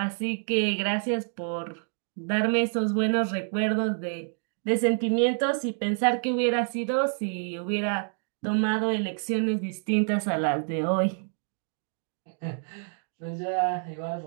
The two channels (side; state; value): left; silent; 60 dB below the other